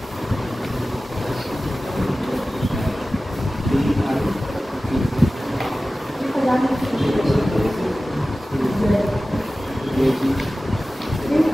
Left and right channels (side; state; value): both; normal; correlation 0.96